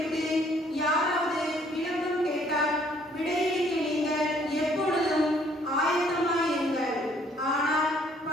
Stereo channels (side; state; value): both; normal; correlation 0.63